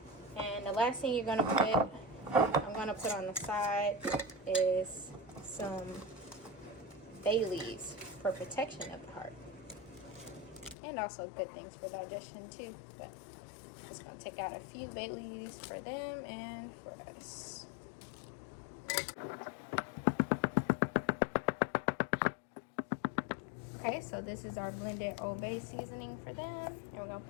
And the last thing I'm gonna put on the side is some bay leaves for protection of the heart. And also good things for digestion too. But just gonna take out a few bay leaves for them and for us. Okay, so this is our blended Old Bay seasoning for them, and we're gonna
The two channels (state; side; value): drops out; right; at 10.8 s